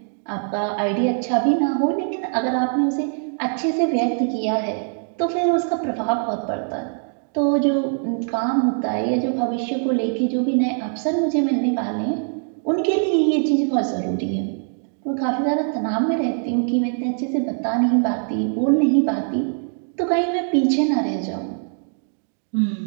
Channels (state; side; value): silent; left; 61 dB below the other